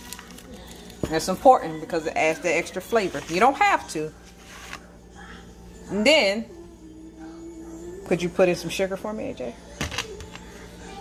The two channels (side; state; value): both; identical; correlation 1.00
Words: That's important because it adds the extra flavor. You don't have to. And then, could you put in some sugar for me, AJ?